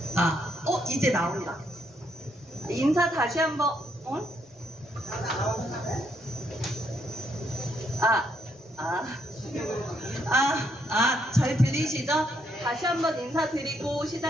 이제 나온다. 인사 다시 한번, 잘 들리시죠? 다시 한번 인사드리고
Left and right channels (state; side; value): normal; both; correlation 0.74